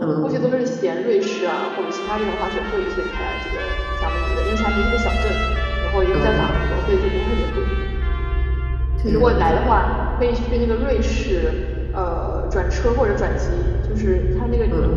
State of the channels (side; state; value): both; identical; correlation 1.00